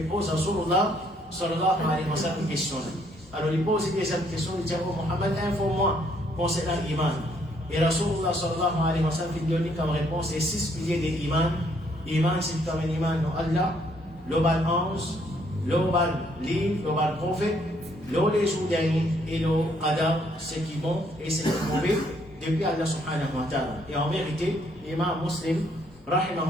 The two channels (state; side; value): normal; both; correlation 0.68